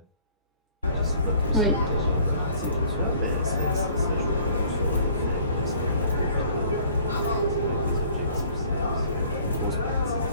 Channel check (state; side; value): inverted; both; correlation -0.54